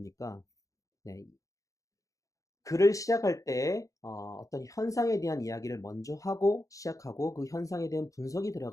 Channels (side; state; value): right; late; 0.16 ms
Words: 네, 글을 시작할 때 어떤 현상에 대한 이야기를 먼저 하고 시작하고 그 현상에 대한 분석이